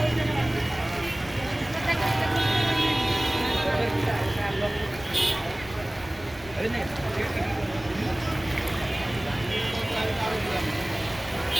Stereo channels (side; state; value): left; noise; rumble, 19 dB below the sound